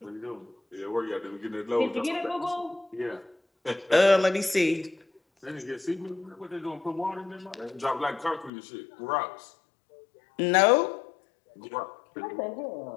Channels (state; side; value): drops out; right; at 8.5 s